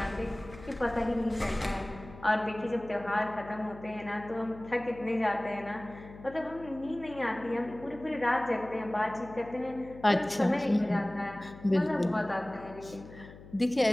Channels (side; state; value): left; noise; hum, 17 dB below the sound